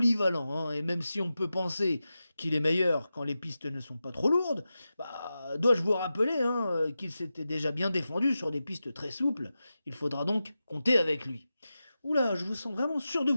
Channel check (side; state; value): both; inverted; correlation -0.92